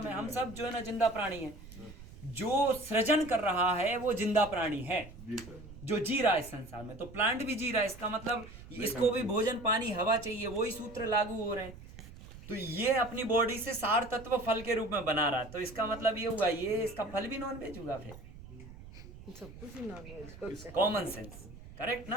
है। हम सब जो है ना जिंदा प्राणी हैं। जो सृजन कर रहा है वो जिंदा प्राणी है, जो जी रहा है इस संसार में। तो प्लांट भी जी रहा है, इसका मतलब इसको भी भोजन पानी हवा चाहिए, वही सूत्र लागू हो रहे हैं। तो ये अपनी बॉडी से सार तत्व फल के रूप में बना रहा है, तो इसका मतलब ये हुआ ये इसका फल भी नॉन वेज होगा फिर, सब कुछ ही non veg. Common sense, correct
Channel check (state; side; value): noise; right; rumble, 16 dB below the sound